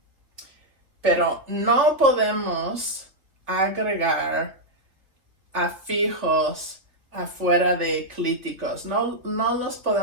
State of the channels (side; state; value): left; late; 3.1 ms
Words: Pero no podemos agregar afijos afuera de clíticos. No los